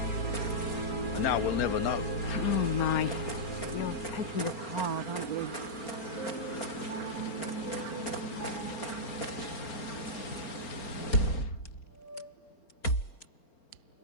And now we'll never know. Oh my. You're taking this hard, aren't you?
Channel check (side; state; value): right; late; 4.4 ms